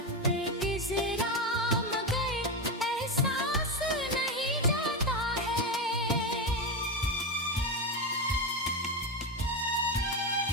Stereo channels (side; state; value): both; normal; correlation 0.14